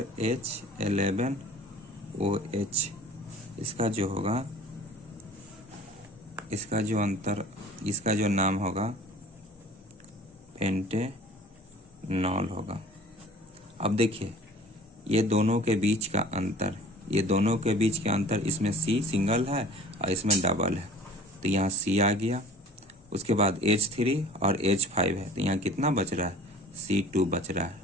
H11OH, इसका जो होगा इसका जो अंतर, इसका जो नाम होगा पेंटेनॉल होगा। अब देखिए ये दोनों के बीच का अंतर, ये दोनों के बीच का अंतर, इसमें C सिंगल है और इसमें डबल है, तो यहाँ C आ गया। उसके बाद H3 और H5 है, तो यहाँ कितना बच रहा है, C2 बच रहा है।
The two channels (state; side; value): normal; both; correlation 0.46